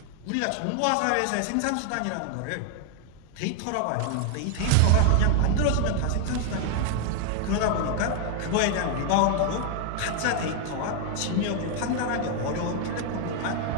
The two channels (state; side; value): different; both; correlation 0.00